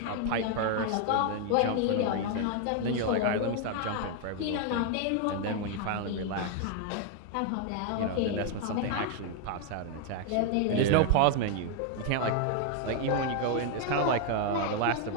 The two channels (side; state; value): both; different; correlation 0.00